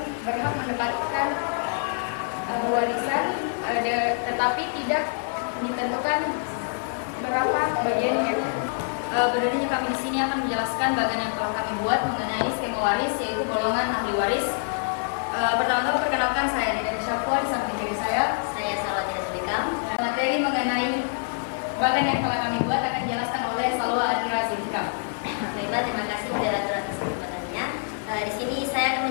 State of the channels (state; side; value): silent; right; 61 dB below the other